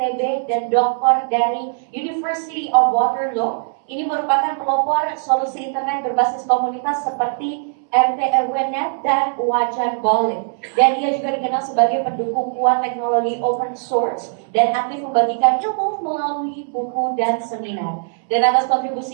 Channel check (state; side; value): silent; left; 66 dB below the other